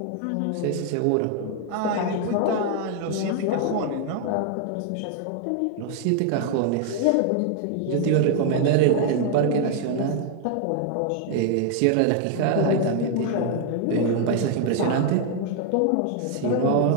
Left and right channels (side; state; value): both; different; correlation 0.00